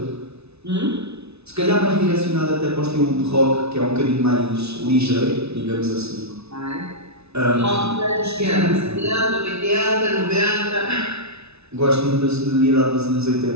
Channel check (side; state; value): left; late; 0.80 ms